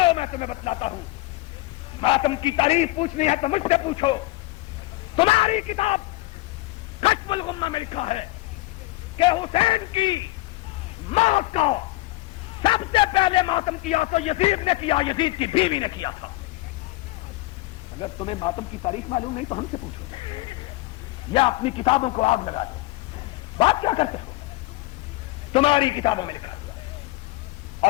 میں تمہیں بتلاتا ہوں. ماتم کی تاریخ پوچھنی ہے تو مجھ سے پوچھو. تمہاری کتاب کشف الغمہ میں لکھا ہے کہ حسین کی موت کا سب سے پہلے ماتم کیا تو یزید نے کیا، یزید کی بیوی نے کیا تھا. اگر تمہیں ماتم کی تاریخ معلوم نہیں تو ہم سے پوچھو یا اپنی کتابوں کو آگ لگا دو. بات کیا کرتے ہو؟ تمہاری کتابوں میں لکھا ہوا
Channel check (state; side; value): quieter; right; 20.5 dB